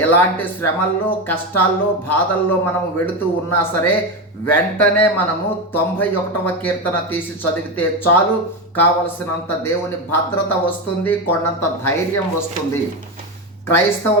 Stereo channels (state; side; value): normal; both; correlation 0.15